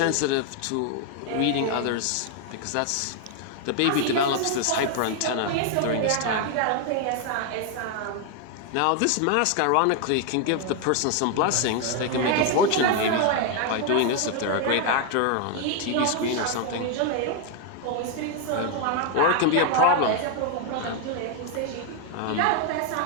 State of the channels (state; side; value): different; both; correlation 0.00